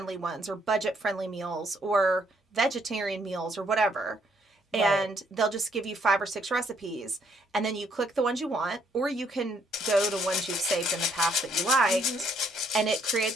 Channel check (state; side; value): normal; both; correlation 0.69